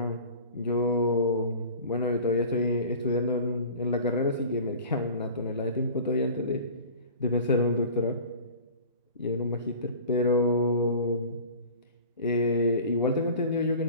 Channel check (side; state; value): both; inverted; correlation -0.41